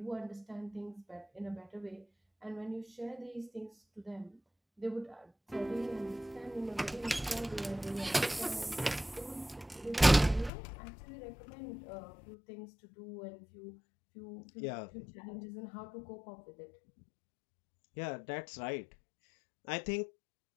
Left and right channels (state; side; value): drops out; right; at 10.5 s